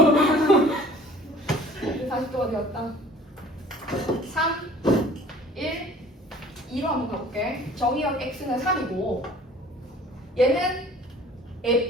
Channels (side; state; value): both; normal; correlation 0.49